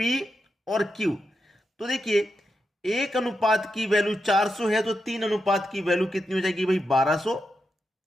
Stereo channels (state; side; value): normal; both; correlation 0.86